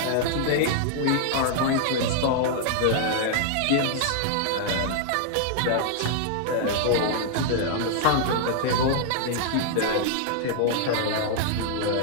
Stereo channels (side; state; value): both; different; correlation 0.00